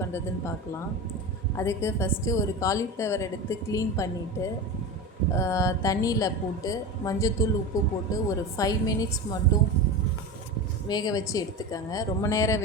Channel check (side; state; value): both; normal; correlation 0.26